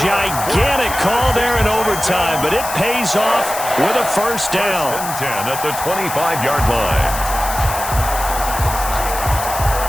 gigantic call there in overtime, but it pays off with a first down. First and 10 at the 25-yard line.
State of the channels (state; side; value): noise; left; hiss, 8 dB below the sound